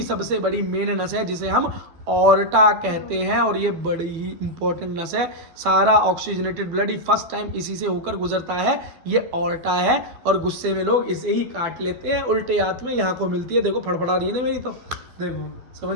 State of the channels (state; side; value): late; left; 12 ms